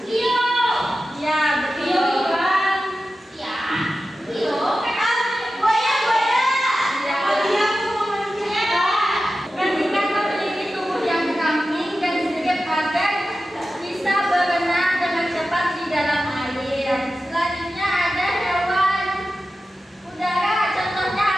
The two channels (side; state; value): both; normal; correlation 0.93